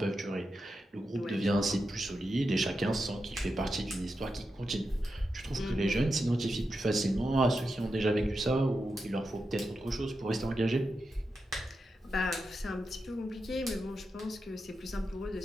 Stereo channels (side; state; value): both; normal; correlation 0.88